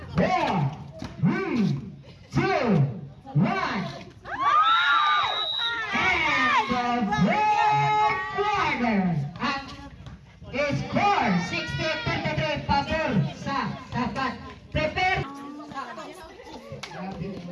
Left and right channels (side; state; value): both; identical; correlation 1.00